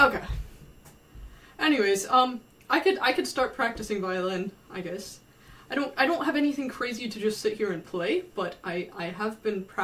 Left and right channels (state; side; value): identical; both; correlation 1.00